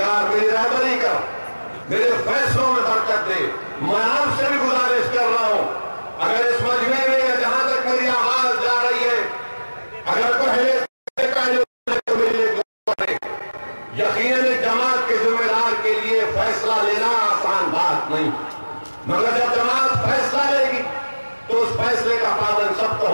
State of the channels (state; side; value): inverted; both; correlation -1.00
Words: मेरी रहबरी कर, मेरे फैसलों में बरकत दे। मैं आपसे भी गुजारिश कर रहा हूं, अगर इस मजमे में जहां तक मेरी आवाज जा रही है, अगर पहले तो मेरे यकीनन एक जमात के जिम्मेदार के लिए फैसला लेना आसान बात नहीं, मगर जब जमात फैसला लेगी तो उस फैसले का पालन सबको